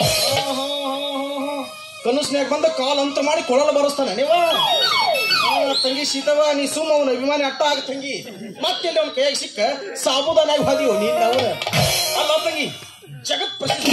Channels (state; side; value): identical; both; correlation 1.00